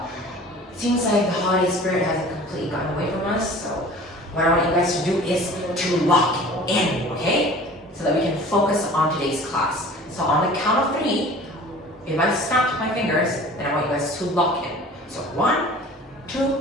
Seems like the holiday spirit hasn't completely gotten away from us, so what I want you guys to do is to lock in, okay? So that we can focus on today's class. So on the count of 3, if I snap my fingers, then I want you guys to lock in. So 1, 2,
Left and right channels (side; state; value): both; normal; correlation 0.44